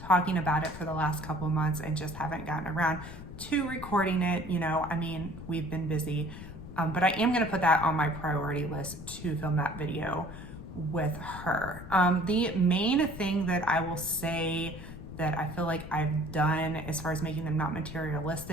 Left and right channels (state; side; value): noise; left; rumble, 12 dB below the sound